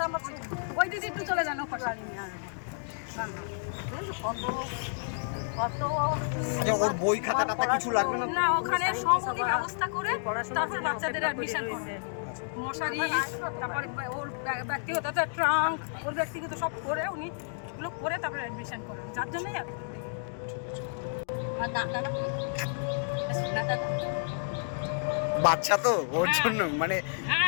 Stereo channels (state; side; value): silent; right; digital silence